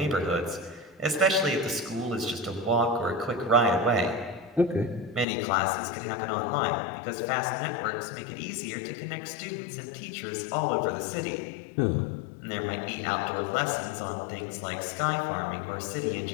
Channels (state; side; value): drops out; right; at 5.2 s